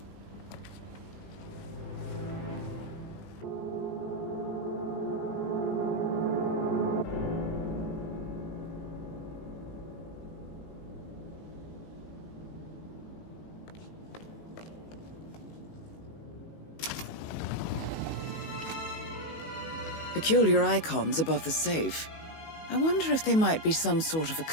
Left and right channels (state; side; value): late; right; 19 ms